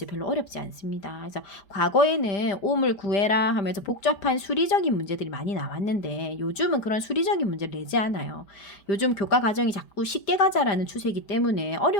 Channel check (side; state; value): right; late; 5.0 ms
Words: 별로 어렵지 않습니다. 그래서 과거에는 옴을 구해라 하면서 복잡한 수리적인 문제들이 많이 나왔는데 요즘은 그런 수리적인 문제를 내지 않아요. 요즘 교과 과정이 자꾸 쉽게 가자라는 추세이기 때문에